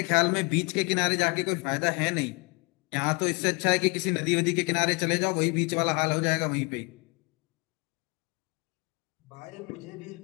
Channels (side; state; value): right; quieter; 29.7 dB